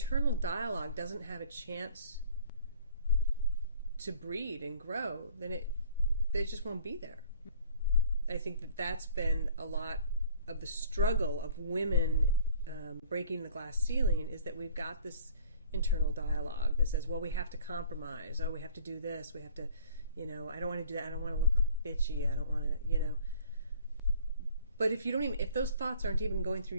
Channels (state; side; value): inverted; both; correlation -0.51